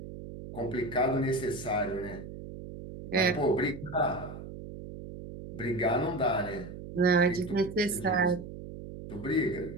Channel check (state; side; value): noise; right; hum, 11 dB below the sound